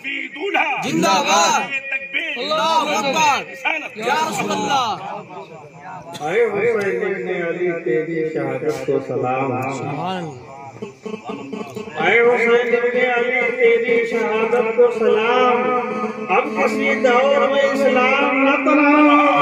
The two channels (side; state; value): both; identical; correlation 1.00